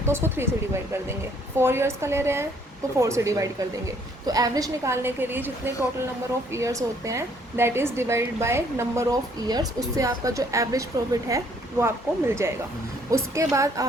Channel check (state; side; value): normal; both; correlation 0.64